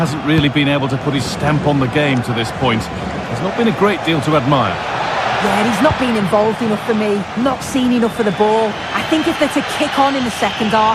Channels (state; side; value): identical; both; correlation 1.00